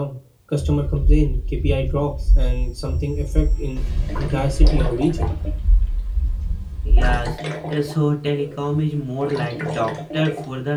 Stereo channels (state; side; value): identical; both; correlation 1.00